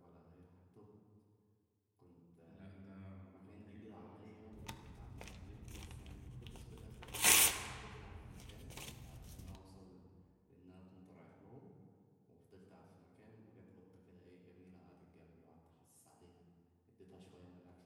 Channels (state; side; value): identical; both; correlation 1.00